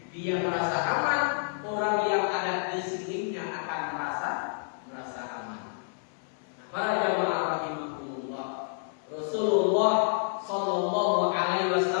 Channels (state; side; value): silent; right; 58 dB below the other